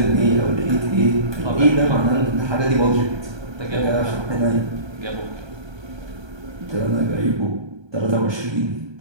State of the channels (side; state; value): left; late; 1.2 ms